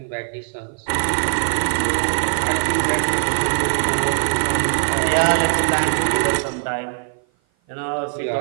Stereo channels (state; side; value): silent; left; 55 dB below the other